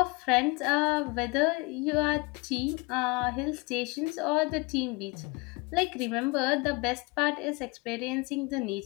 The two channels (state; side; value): quieter; right; 26.7 dB